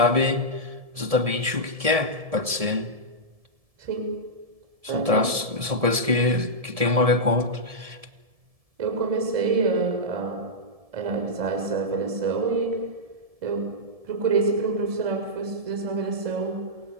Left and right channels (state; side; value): late; left; 1.7 ms